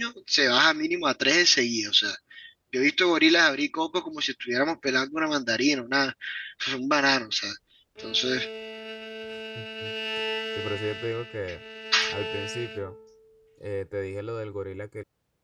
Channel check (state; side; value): identical; both; correlation 1.00